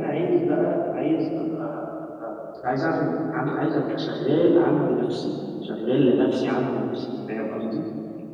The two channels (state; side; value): identical; both; correlation 1.00